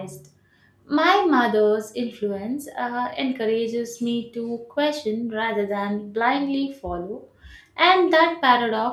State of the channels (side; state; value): both; identical; correlation 1.00